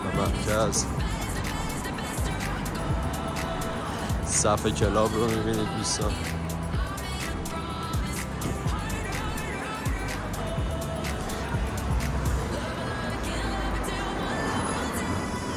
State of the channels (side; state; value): both; identical; correlation 1.00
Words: مرکز. صف کلاب رو میبینید دوستان.